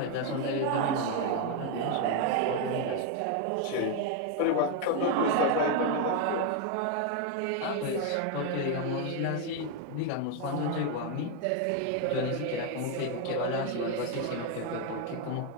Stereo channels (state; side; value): different; both; correlation 0.01